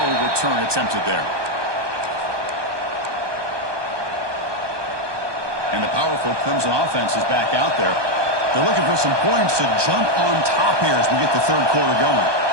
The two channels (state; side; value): late; left; 1.2 ms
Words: return attempted there. And the powerful Clemson offense is back out there. They're looking for some points to jump on top here as we get the third quarter going.